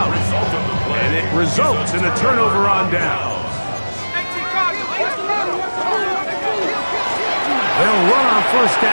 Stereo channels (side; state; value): both; inverted; correlation -1.00